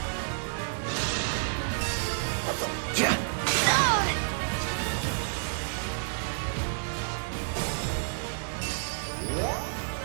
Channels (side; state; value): left; silent; digital silence